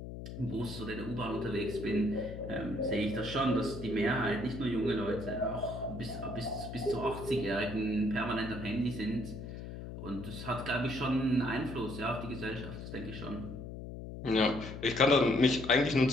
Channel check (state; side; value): noise; left; hum, 9 dB below the sound